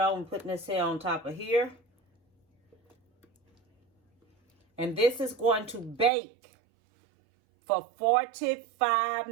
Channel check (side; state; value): left; drops out; at 6.1 s